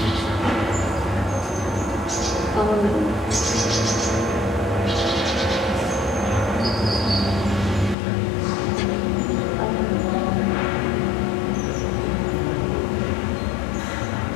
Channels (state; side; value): drops out; right; at 8.0 s